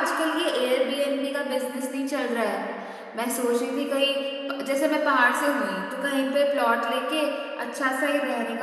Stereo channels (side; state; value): both; identical; correlation 1.00